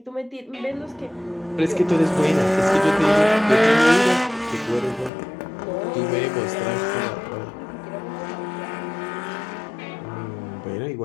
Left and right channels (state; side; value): drops out; right; at 5.1 s